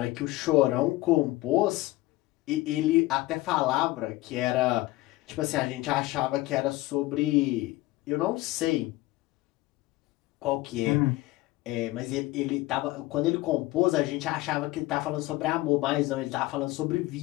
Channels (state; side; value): quieter; right; 18.9 dB